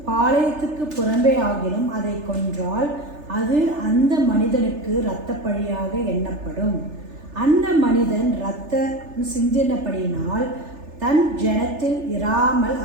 பாளையத்துக்கு புறம்பே ஆகிலும் அதை கொன்றால் அது அந்த மனிதனுக்கு இரத்தப்பழியாக எண்ணப்படும். அந்த மனிதன் இரத்தம் சிந்தினபடியினால் தன் ஜனத்தில் இராமல்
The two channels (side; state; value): left; late; 3.3 ms